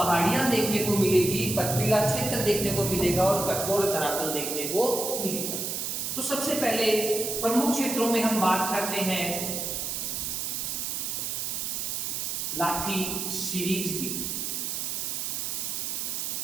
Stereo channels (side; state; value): right; noise; hiss, 2 dB below the sound